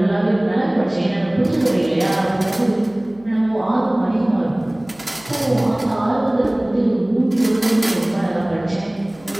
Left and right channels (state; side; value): noise; left; hum, 25 dB below the sound